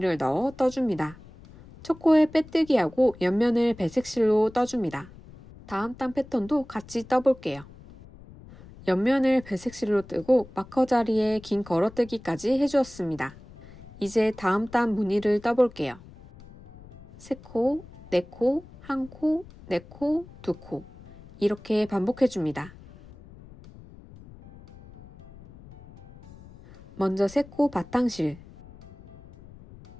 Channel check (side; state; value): left; noise; rumble, 20 dB below the sound